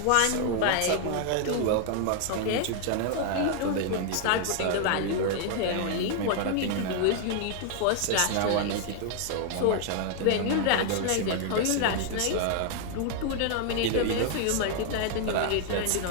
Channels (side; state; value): both; different; correlation 0.00